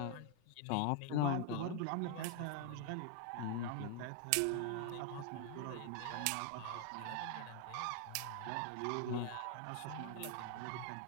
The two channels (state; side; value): different; both; correlation 0.00